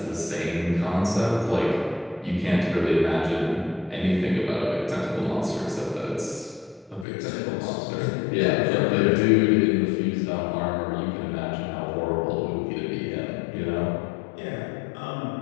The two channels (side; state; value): right; drops out; at 7.1 s